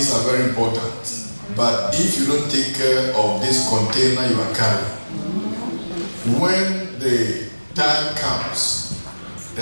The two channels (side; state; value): both; inverted; correlation -1.00